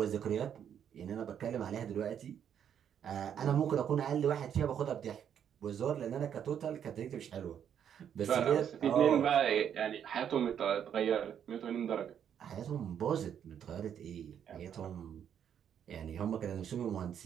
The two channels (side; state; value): left; quieter; 8.9 dB